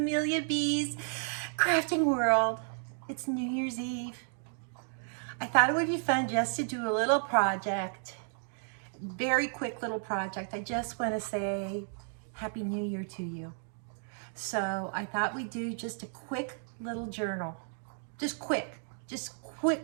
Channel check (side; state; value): left; silent; 56 dB below the other